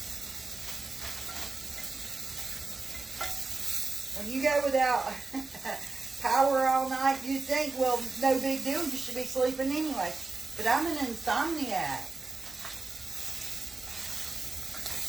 When you go without power all night, you think, well, no big deal, you should be sleeping anyway. But I'm an insomniac.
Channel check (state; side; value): quieter; left; 3.7 dB